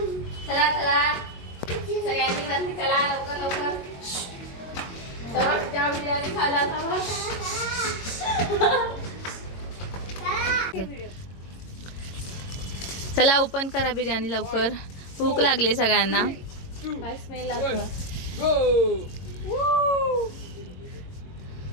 चला चला सगळ्यांनी वरती चला लवकर लवकर. त्या बिर्याणी खायला जावा. चला ओपन करा बिर्याणी लवकर. भूक लागली सगळ्यांना. काय स्मेल लागतो.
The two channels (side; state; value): right; late; 22 ms